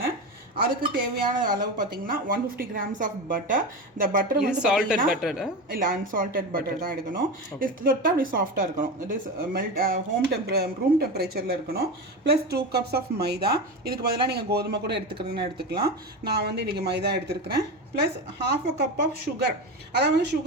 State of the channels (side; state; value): both; normal; correlation 0.22